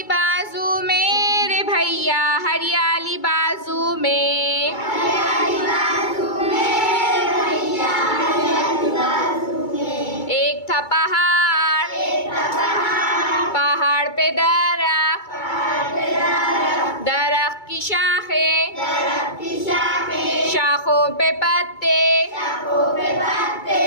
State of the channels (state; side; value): late; right; 2.2 ms